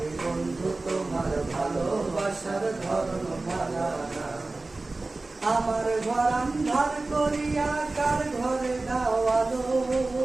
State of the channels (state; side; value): quieter; left; 3.3 dB